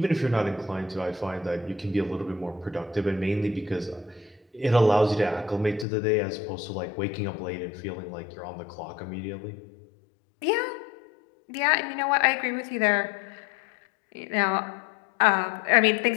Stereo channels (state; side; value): drops out; right; at 5.9 s